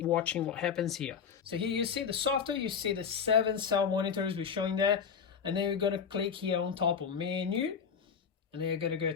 watching what happens here. So here you see the software, you see the 7 cell monitors we're showing there, and then we're going to click here on top of menu, and then you're going to go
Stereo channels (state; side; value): quieter; right; 6.8 dB